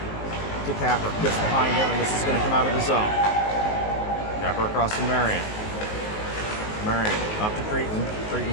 to Capper, gets behind him, and this is going to come out of the zone. Capper across to Marion. Marion up to Cretan.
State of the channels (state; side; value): late; right; 19 ms